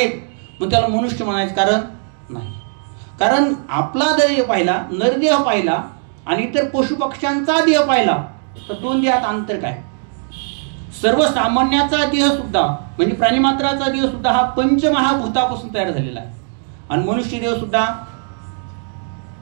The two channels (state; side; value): silent; left; 60 dB below the other